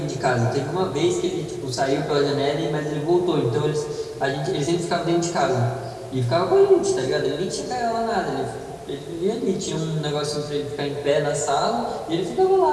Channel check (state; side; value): identical; both; correlation 1.00